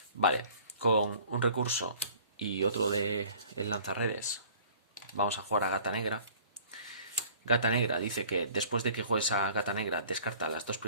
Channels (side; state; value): both; inverted; correlation -0.50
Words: Vale, con un recurso y otro de el lanzarredes vamos a jugar a Gata Negra. Gata Negra dice que después de que juegues a Gata Negra descarta las 2